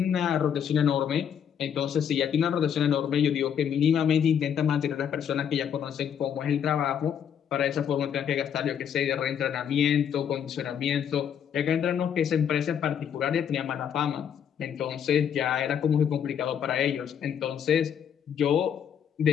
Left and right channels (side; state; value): right; quieter; 8.4 dB